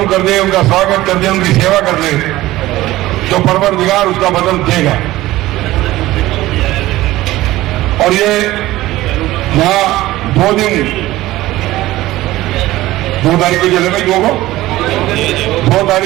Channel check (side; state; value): left; quieter; 16.8 dB